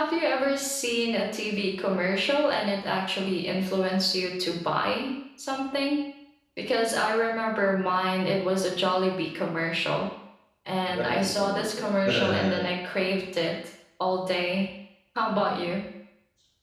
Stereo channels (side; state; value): both; identical; correlation 1.00